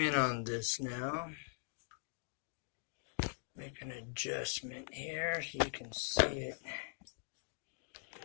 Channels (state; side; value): silent; right; digital silence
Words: on this now. Make an adjustment here so you can see it.